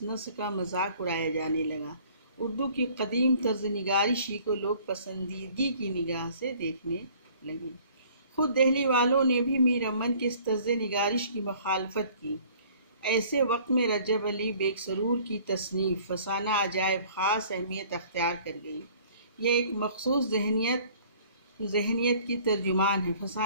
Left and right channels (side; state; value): both; inverted; correlation -0.54